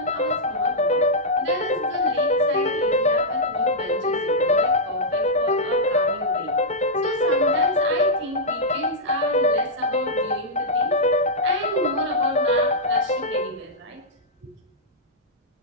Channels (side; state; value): both; normal; correlation -0.08